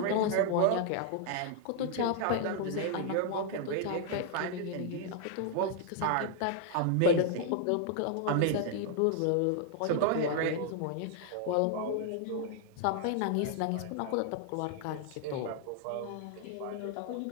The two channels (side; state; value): both; different; correlation 0.00